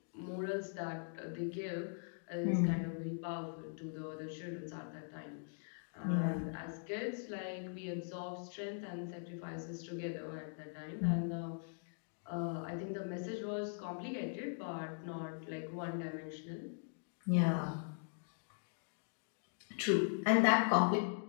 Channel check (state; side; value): silent; right; digital silence